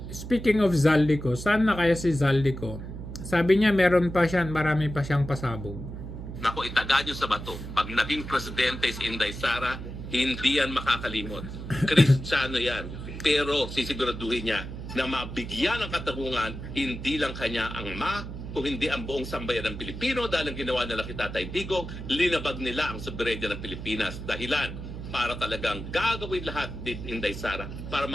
Speaking of Zaldico, saan na kaya si Zaldico? Sabi niya meron pa siya, marami pa siyang pasabog. Naku, itaga nyo sa bato. Pag naging presidente si Inday Sara, hindi yan makakalimot. Kristiyano yan. Pero sisiguraduhin niya na mabigyan ng katarungan, hindi lang kanya ang kung hindi ang buong sambayan ng Pilipino dahil ang ginawa nila kay Tatay Digong, linabag nila ang soberenya ng Pilipinas. Dahilan para talagang gagawin lahat din Inday Sara para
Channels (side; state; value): right; noise; hum, 9 dB below the sound